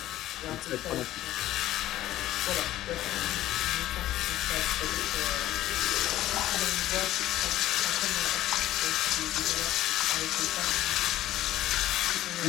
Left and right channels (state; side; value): quieter; right; 14.2 dB